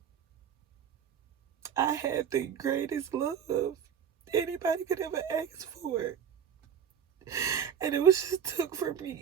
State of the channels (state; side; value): quieter; left; 8.2 dB